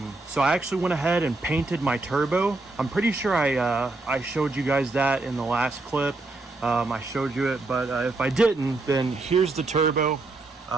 I actually went ahead and painted my turbo. I'm pretty sure I showed you guys that in the last clip. I showed you it, but if I didn't, then here's the turbo.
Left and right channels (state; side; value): quieter; left; 3.2 dB